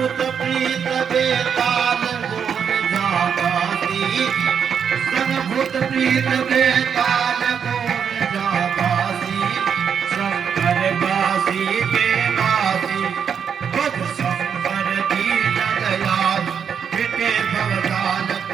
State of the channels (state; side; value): quieter; left; 7.3 dB